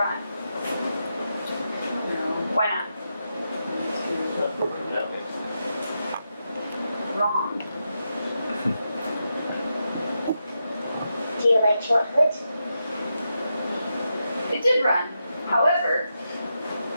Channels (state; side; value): inverted; both; correlation -0.86